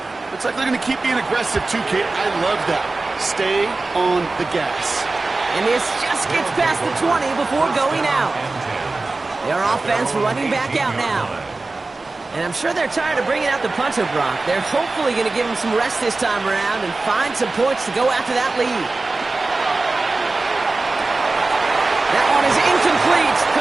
Looks like they're going to keep being aggressive too, Kate. I love that. Stay on the gas. And this just gets past the 20 before going out. Their offense running back out now. And I'm sure they're tired of bringing out the punter, Brock. They're hopefully going to give him some rest this time around and find some points to go after that lead. That one is incomplete.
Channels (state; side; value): quieter; left; 3.4 dB